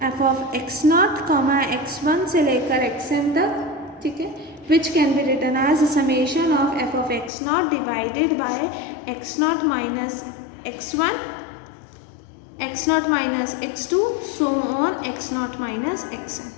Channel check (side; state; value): right; drops out; at 7.3 s